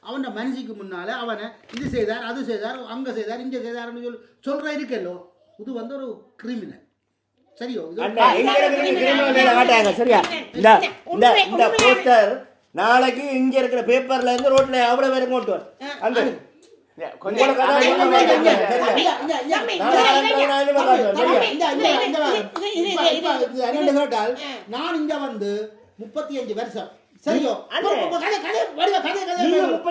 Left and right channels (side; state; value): both; identical; correlation 1.00